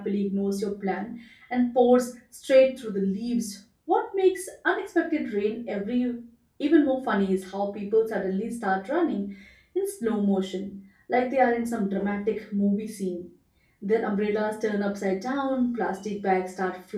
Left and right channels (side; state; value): both; identical; correlation 1.00